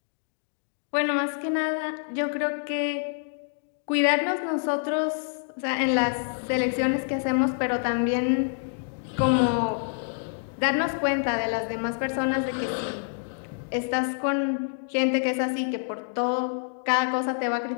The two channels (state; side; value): silent; right; digital silence